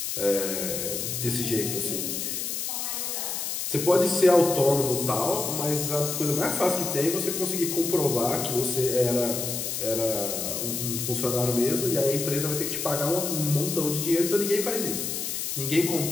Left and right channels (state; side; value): noise; left; hiss, 3 dB below the sound